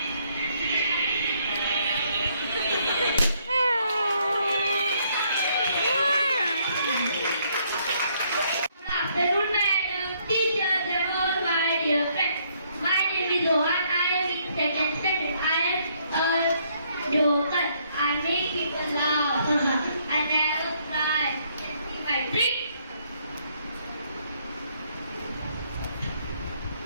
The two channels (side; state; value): both; inverted; correlation -0.69